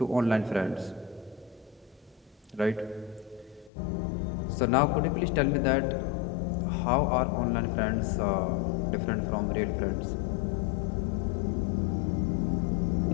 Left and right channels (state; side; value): drops out; right; at 3.7 s